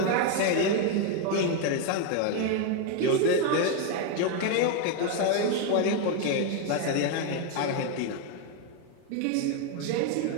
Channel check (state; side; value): different; both; correlation 0.01